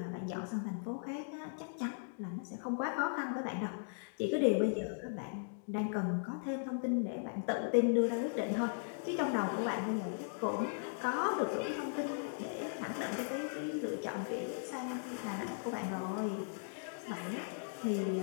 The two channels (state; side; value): silent; right; digital silence